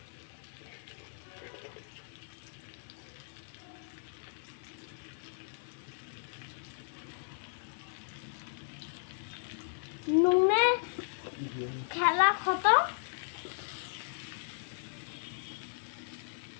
নুনে খেলা খতম।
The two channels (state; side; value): silent; right; digital silence